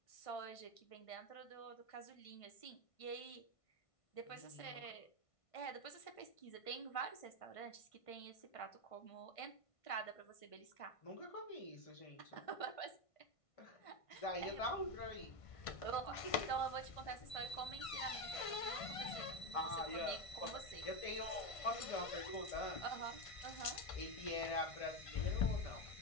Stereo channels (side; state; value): right; late; 1.5 ms